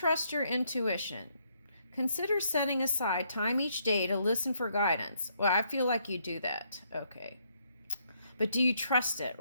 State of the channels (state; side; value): inverted; both; correlation -0.73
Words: your intuition? Consider setting aside time each day to listen for guidance. Well, I feel like you do that. Okay. But do you trust it,